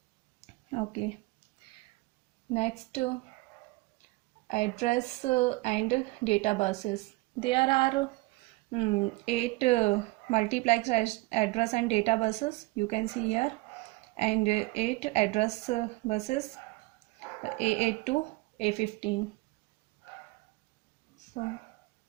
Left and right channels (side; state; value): left; quieter; 22.1 dB